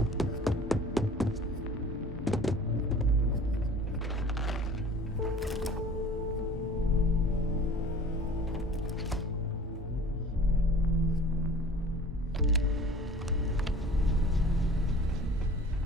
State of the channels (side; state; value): both; normal; correlation 0.46